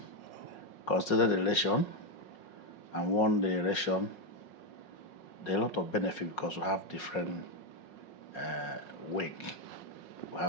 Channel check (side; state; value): right; late; 5.5 ms